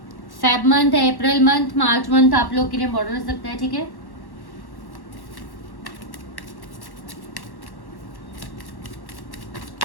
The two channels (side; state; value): right; late; 1.1 ms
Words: फेब मंथ है, अप्रैल मंथ, मार्च मंथ आप लोग के लिए इंपॉर्टेंट हो सकता है, ठीक है।